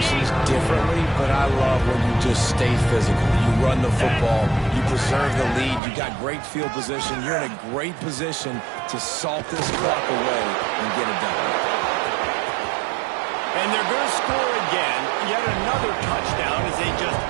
differently, but I love when you just stay physical. You run the football, you preserve the lead, you got great field position, you're in a great position to salt this clock away and get it done. And they're going to score again, yet another touchdown as they just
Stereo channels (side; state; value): left; drops out; at 5.8 s